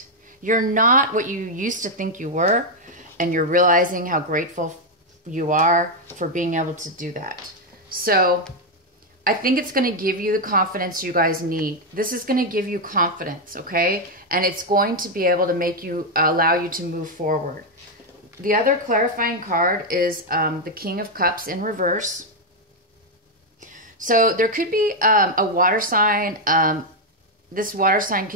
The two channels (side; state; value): both; normal; correlation 0.02